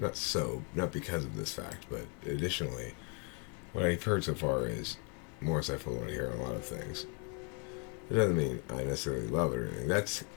not because of this fact, but additionally, what I've heard so far is more insightful than I hear a lot of things. It doesn't mean I necessarily love it or anything. That's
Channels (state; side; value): quieter; right; 37.5 dB